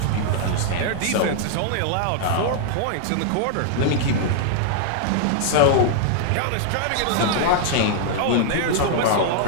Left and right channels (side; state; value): both; different; correlation -0.01